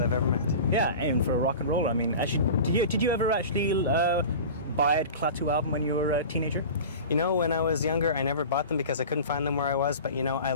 I've ever met. Yeah, and for a rock and roller. I mean, actually, did you ever actually buy a Klaatu album when you were a teenager? You know, when I was younger, I never bought them because I couldn't find them where I was, but you know, I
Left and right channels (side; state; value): both; inverted; correlation -0.35